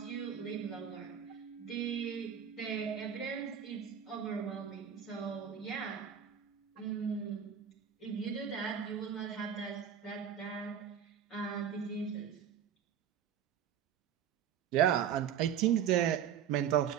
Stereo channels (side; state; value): left; quieter; 8.6 dB